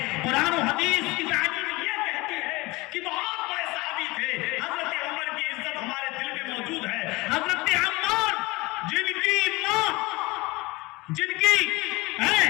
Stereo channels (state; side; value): quieter; right; 22.5 dB